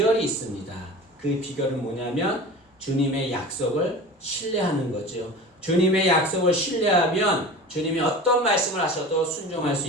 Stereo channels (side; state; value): both; normal; correlation 0.35